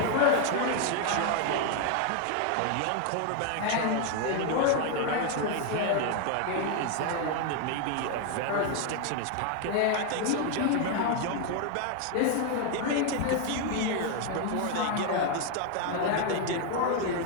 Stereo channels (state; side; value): different; both; correlation 0.01